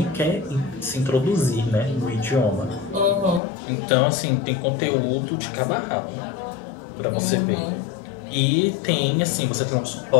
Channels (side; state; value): right; drops out; at 3.4 s